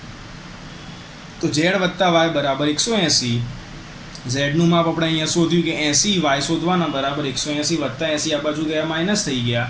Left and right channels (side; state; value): both; identical; correlation 1.00